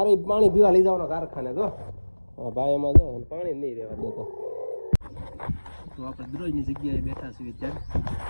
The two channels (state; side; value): inverted; both; correlation -1.00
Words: પાણી પીવા લઈ જવાનો કારખાને. જો ભાઈ એમાં જો પાણી નહીં રહેવા દેતો. તો આપણે દરરોજની જગ્યાએ બેઠા છીએ અત્યારે.